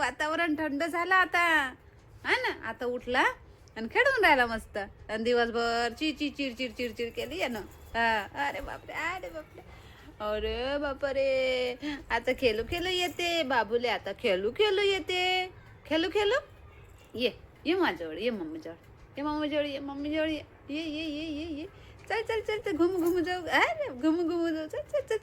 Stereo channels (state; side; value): identical; both; correlation 1.00